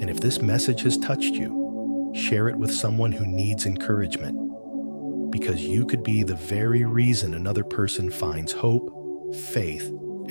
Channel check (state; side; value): inverted; both; correlation -1.00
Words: And if this message has touched you, share it with someone who needs encouragement, because you could be the very reason another person finds hope, faith,